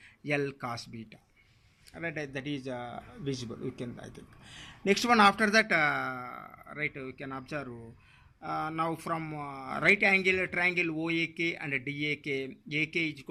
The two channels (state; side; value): identical; both; correlation 1.00